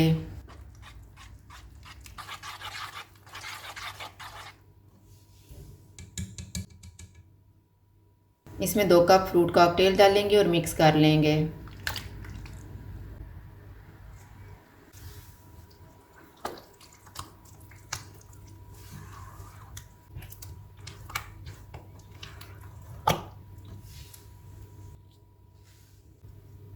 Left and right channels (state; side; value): identical; both; correlation 1.00